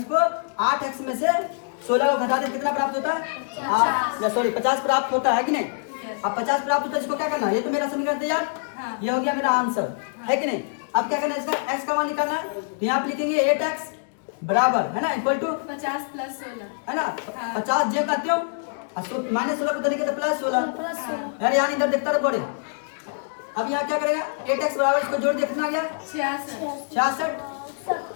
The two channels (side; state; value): right; silent; digital silence